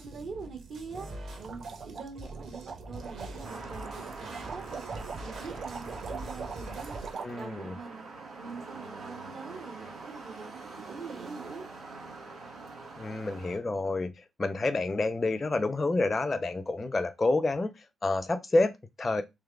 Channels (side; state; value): both; normal; correlation 0.92